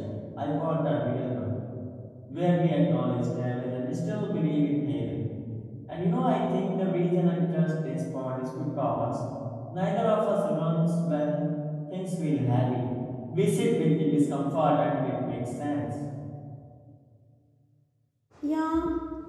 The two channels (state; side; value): identical; both; correlation 1.00